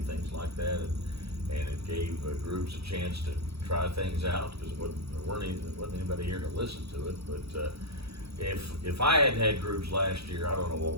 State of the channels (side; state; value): left; late; 0.77 ms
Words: things like that, and it gave Grubes a chance to try things out, because there wasn't anybody here to listen to it, but if I hadn't had Grubes last year, I don't know